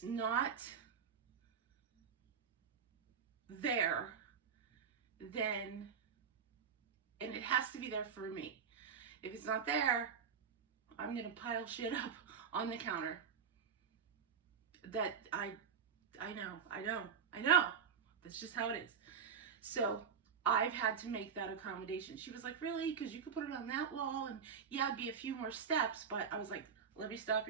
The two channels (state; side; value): quieter; left; 6.8 dB